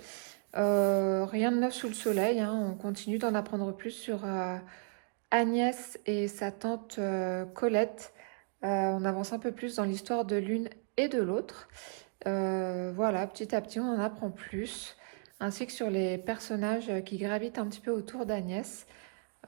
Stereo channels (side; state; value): left; silent; 55 dB below the other